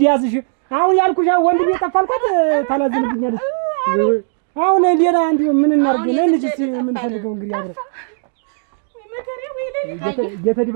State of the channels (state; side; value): silent; left; digital silence